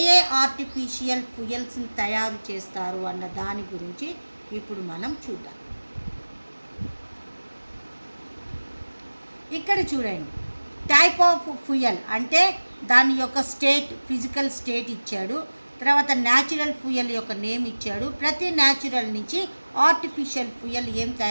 ఆర్టిఫిషియల్ ఫ్యూయల్స్ని తయారు చేస్తారు అన్న దాని గురించి ఇప్పుడు మనం చూద్దాం. ఇక్కడ చూడండి, టైప్ ఆఫ్ ఫ్యూయల్ అంటే దాని యొక్క స్టేట్, ఫిజికల్ స్టేట్ ఇచ్చాడు. తర్వాత న్యాచురల్ ఫ్యూయల్ యొక్క నేమ్ ఇచ్చాడు. ప్రతి న్యాచురల్ నుంచి ఆర్టిఫిషియల్ ఫ్యూయల్ ఏం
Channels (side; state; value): both; inverted; correlation -1.00